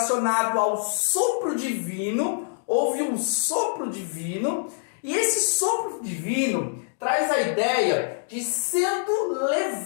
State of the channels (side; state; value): right; silent; digital silence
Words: ao sopro divino. Houve um sopro divino, e esse sopro divino traz a ideia de sendo